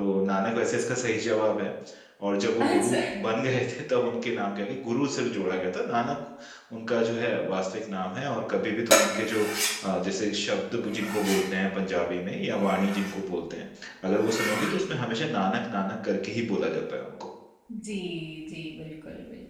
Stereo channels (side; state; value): both; identical; correlation 1.00